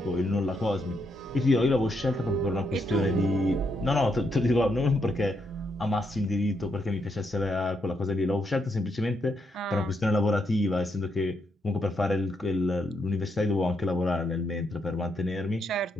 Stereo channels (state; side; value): normal; both; correlation 0.79